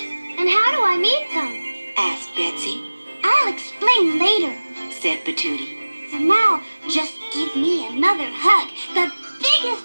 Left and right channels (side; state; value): both; inverted; correlation -1.00